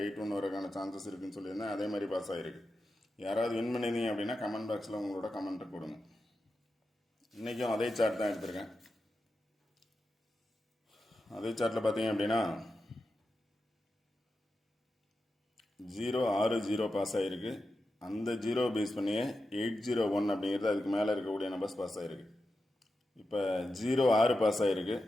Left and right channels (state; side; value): normal; both; correlation 0.90